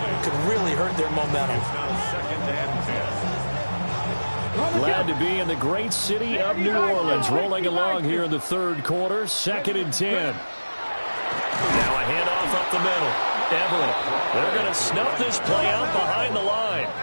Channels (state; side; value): inverted; both; correlation -1.00